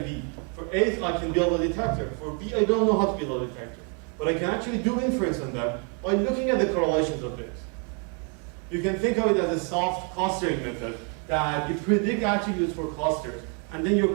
B. For A, I can build a detector. For B, I don't know how to build a detector. But I can actually do inference on them by looking at the correlations of this. You can think of it as a soft clustering method that you predict attributes for clusters, and then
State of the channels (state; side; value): quieter; left; 38.2 dB